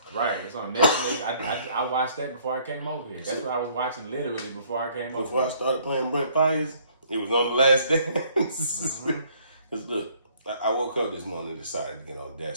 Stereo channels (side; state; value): both; inverted; correlation -0.62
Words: right, it's on Netflix. I watched that before I came over here. That's what I was watching literally before I came over here. Before I started playing Brent Fires, it was on The Last Dance. Because look, I woke up this morning and decided to get on